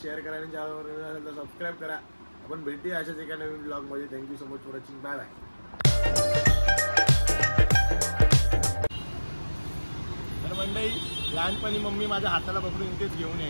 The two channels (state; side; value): inverted; both; correlation -1.00